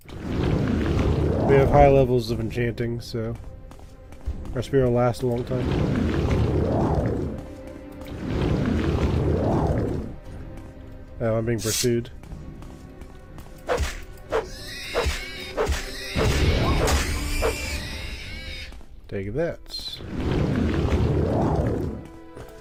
We have high levels of enchanting, so our spear will last a long time. Oh, I'm being pursued. Take that.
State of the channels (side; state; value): both; identical; correlation 1.00